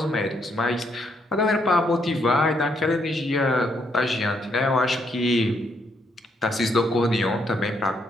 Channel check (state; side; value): normal; both; correlation 0.74